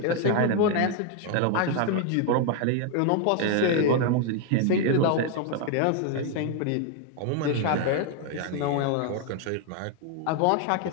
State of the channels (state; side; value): different; both; correlation 0.01